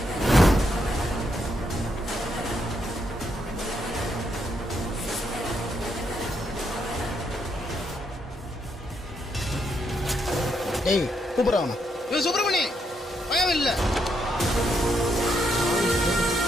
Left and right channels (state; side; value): normal; both; correlation 0.77